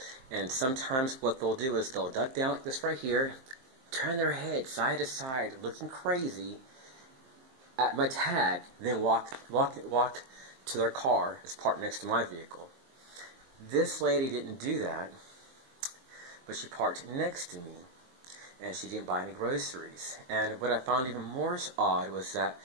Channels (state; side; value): late; left; 23 ms